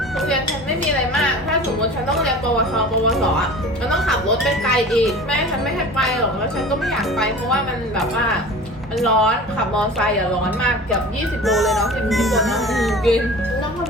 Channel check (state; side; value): normal; both; correlation 0.39